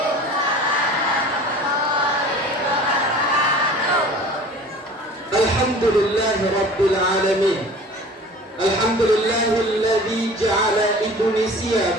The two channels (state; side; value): normal; both; correlation 0.43